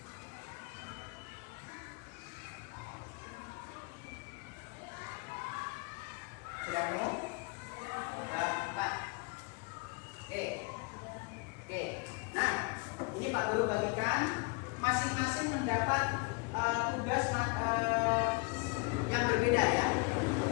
Sudah ketemu? Oke, nah ini Pak Guru bagikan masing-masing mendapat tugas yang berbeda ya.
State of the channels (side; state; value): right; quieter; 30.6 dB